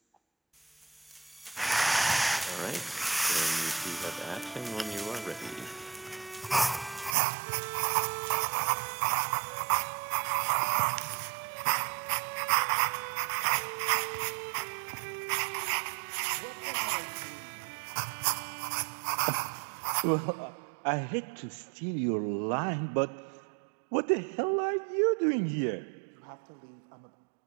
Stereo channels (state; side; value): drops out; left; at 7.2 s